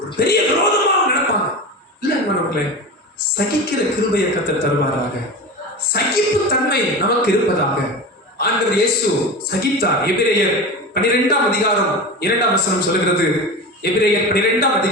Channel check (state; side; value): normal; both; correlation 0.28